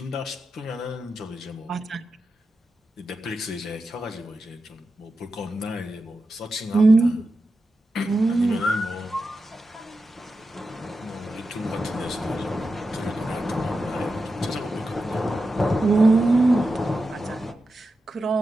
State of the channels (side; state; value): both; normal; correlation 0.90